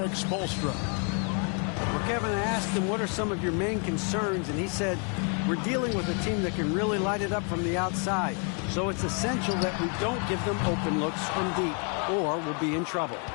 Spoelstra. Well, Kevin, I asked him, what are some of your main concerns? And he said, we're dealing with a team that can really light it up from the outside. So it's essential that we don't give them open looks from deep, or we'll be in trouble.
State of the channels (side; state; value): right; quieter; 39.2 dB